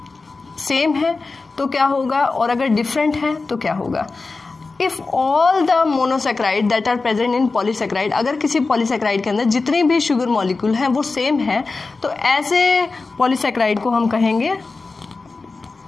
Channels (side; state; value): right; quieter; 3.9 dB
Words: है तो क्या होगा, और अगर डिफरेंट है तो क्या होगा? If all the monosaccharide that are present in polysaccharide, अगर किसी पॉलीसेकेराइड के अंदर जितने भी शुगर मॉलिक्यूल हैं वो सेम है, तो ऐसे पॉलीसेकेराइड को हम कहेंगे